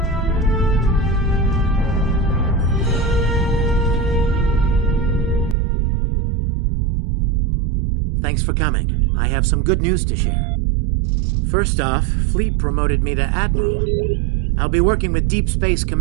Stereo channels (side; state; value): left; drops out; at 5.6 s